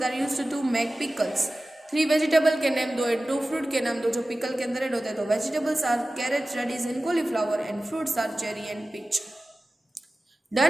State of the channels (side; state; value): both; normal; correlation 0.96